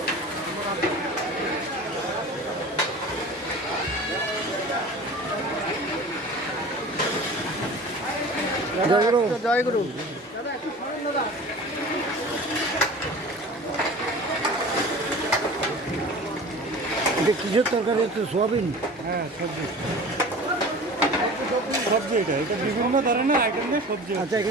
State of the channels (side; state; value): both; normal; correlation 0.39